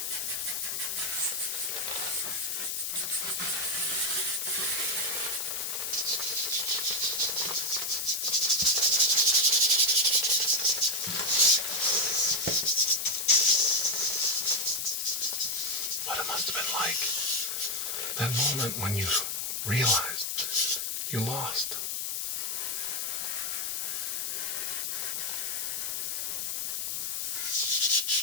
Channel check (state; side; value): noise; left; hiss, 1 dB below the sound